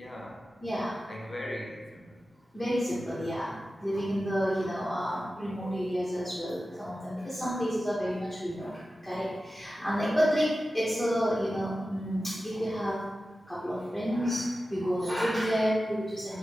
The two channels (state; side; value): normal; both; correlation 0.94